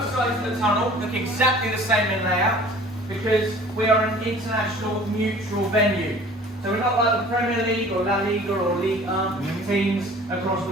sides of the tunnel look exactly the same in layout because we are an international mutual venue. So we're not like the Premier League or La Liga or Ligue 1 teams across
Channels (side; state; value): both; normal; correlation 0.48